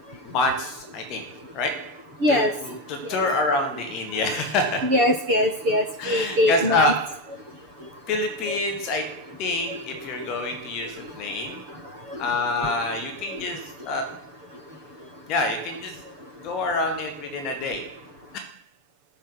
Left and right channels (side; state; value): left; late; 6.9 ms